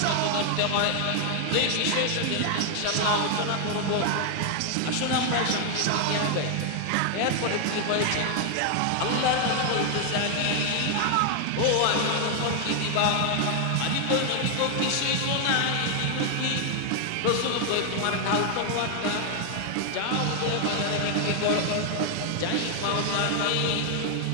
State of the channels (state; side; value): different; both; correlation 0.00